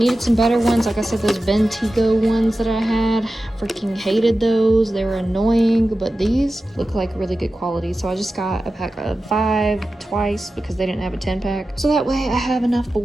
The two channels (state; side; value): normal; both; correlation 0.94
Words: some better ones. Like I said, those Bentigo ones that I had, freaking hated those. They were annoying, but these look like really good quality. So I just got a pack of 5 twice because they didn't have a 10-pack. So that way I have enough